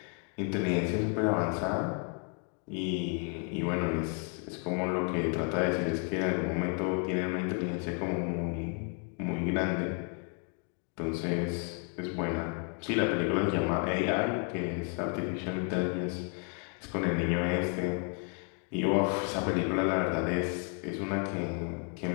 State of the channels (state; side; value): quieter; right; 39.4 dB